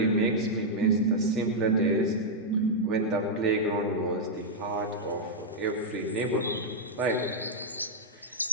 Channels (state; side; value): normal; both; correlation -0.06